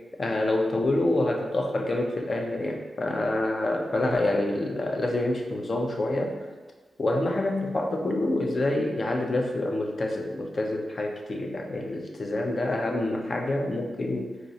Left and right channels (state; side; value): normal; both; correlation 0.91